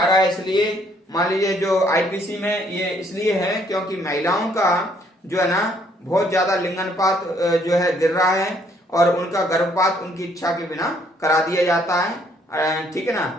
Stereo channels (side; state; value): both; normal; correlation 0.66